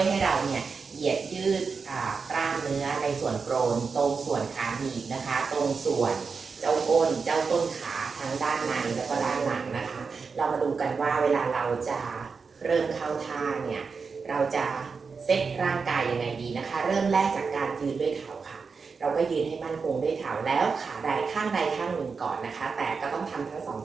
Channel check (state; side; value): quieter; left; 5.1 dB